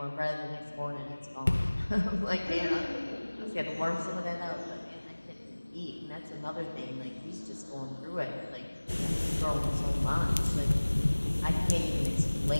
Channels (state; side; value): inverted; both; correlation -1.00